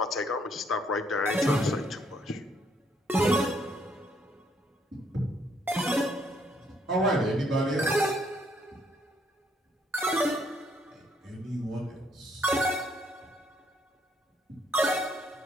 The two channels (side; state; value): both; normal; correlation 0.70